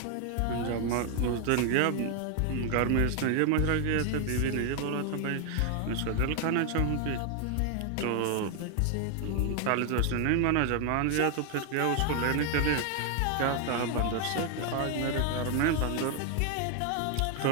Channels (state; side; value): different; both; correlation 0.00